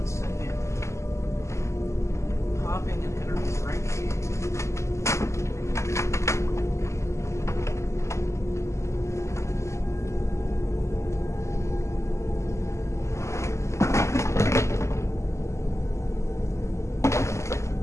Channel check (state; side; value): late; right; 0.14 ms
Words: second. Popping and header Frankie.